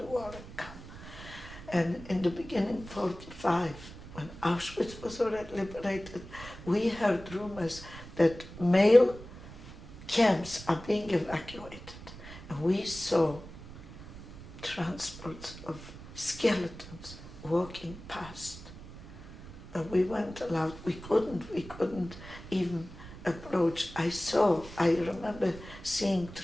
war and come. And in the beginning, 45, when Auschwitz was already liberated, we heard rumors that male camps are being evacuated. And we saw transports of skeletons walking past. But we weren't allowed, we couldn't even approach. I remember seeing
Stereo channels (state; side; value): noise; right; rumble, 15 dB below the sound